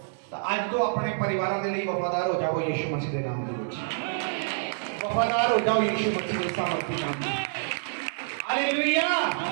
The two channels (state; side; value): silent; left; digital silence